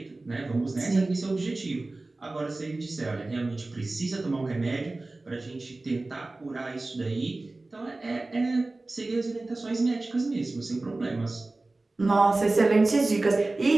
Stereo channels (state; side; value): quieter; left; 3.1 dB